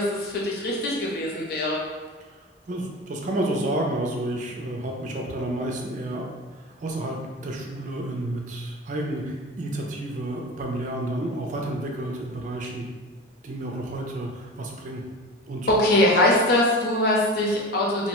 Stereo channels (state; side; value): normal; both; correlation 0.31